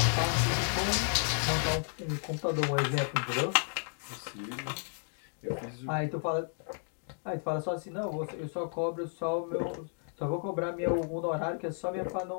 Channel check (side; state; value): right; silent; 56 dB below the other